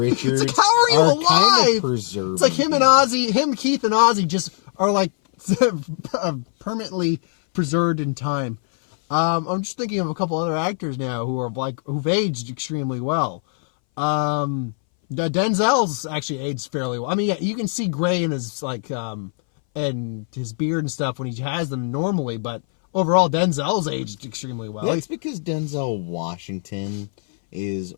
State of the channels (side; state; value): right; silent; 60 dB below the other